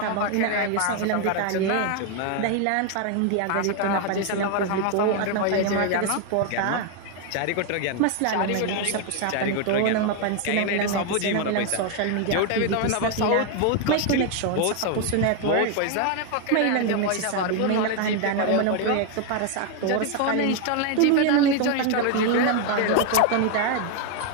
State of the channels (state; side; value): different; both; correlation 0.01